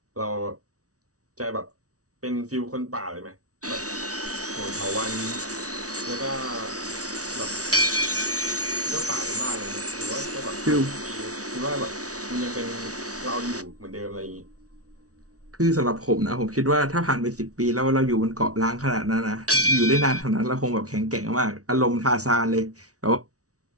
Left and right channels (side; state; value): left; late; 0.67 ms